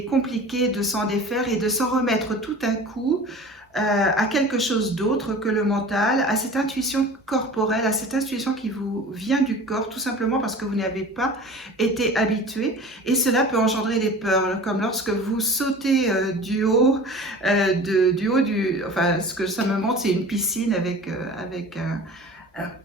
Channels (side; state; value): both; normal; correlation 0.40